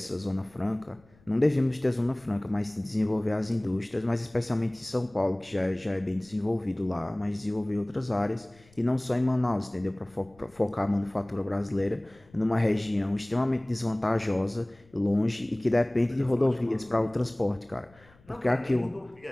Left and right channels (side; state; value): left; noise; rumble, 29 dB below the sound